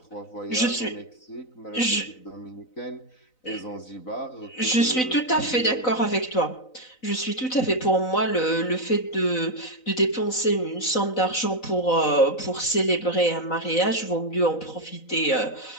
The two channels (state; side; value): late; right; 4.0 ms